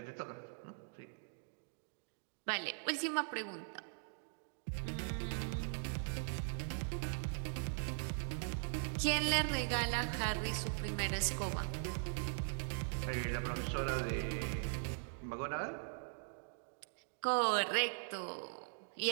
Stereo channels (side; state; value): left; silent; digital silence